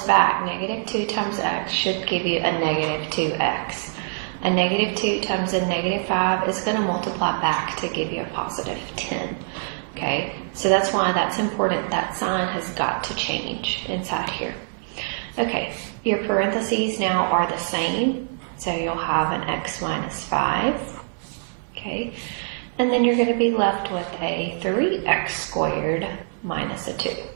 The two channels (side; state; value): left; silent; 63 dB below the other